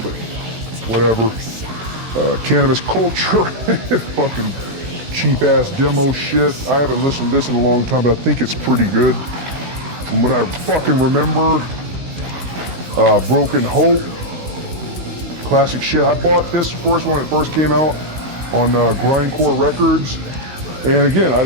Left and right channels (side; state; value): left; late; 16 ms